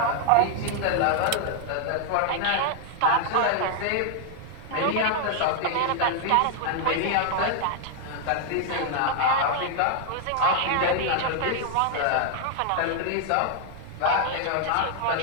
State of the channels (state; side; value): different; both; correlation 0.00